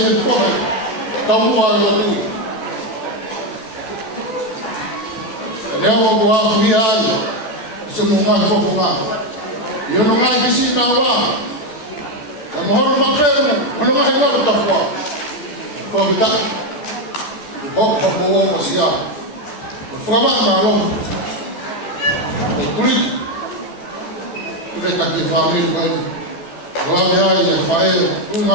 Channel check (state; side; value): late; right; 14 ms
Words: po eh. Tamu ayaw ito. Kaya mo buha kumihay. Sumungan po kumakas. Yo no mai bisi na wa. Na mohon mapel, ono mai ko ta fwa. Ko bita. Hok mo sia. Fwa ma lo. Kulit. Kita tak difahami kan. Kalau dia ya fael, tu